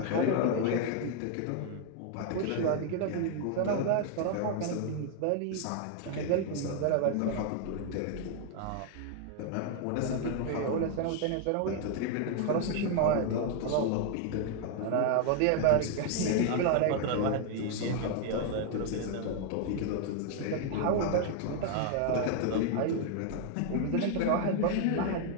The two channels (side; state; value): both; different; correlation 0.00